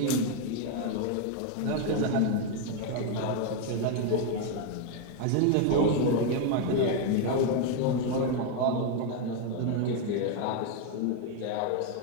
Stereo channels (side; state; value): both; different; correlation 0.01